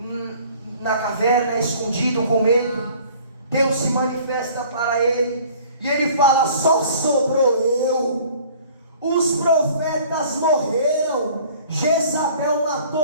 na caverna, escondido com medo. Deus se manifesta para ele, e ele fala: só sobrou eu, os profetas morreram, Jezabel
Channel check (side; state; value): both; inverted; correlation -0.51